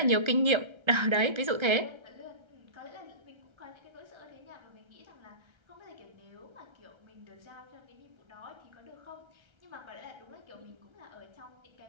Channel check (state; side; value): late; left; 1.3 ms